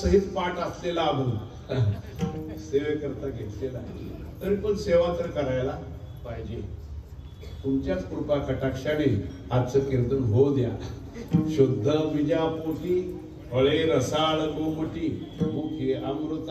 पाठ असलेला अभंग सेवेकरता घेतलेला आहे. तरी पण सेवा तर करायला पाहिजे. तुमच्याच कृपा कटाक्षाने आजचं कीर्तन होऊ द्या. शुद्ध बीजापोटी फळे रसाळ गोमटी, मुखे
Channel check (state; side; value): identical; both; correlation 1.00